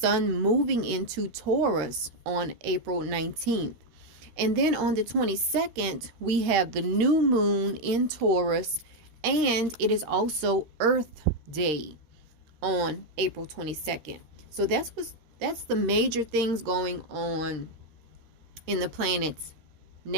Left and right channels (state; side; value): late; left; 13 ms